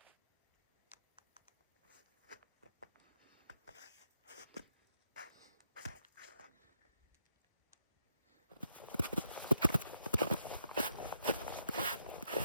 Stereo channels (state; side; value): inverted; both; correlation -0.79